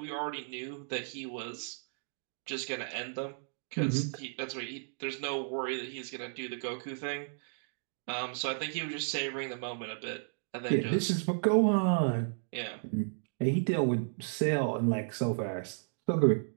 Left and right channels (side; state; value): left; silent; digital silence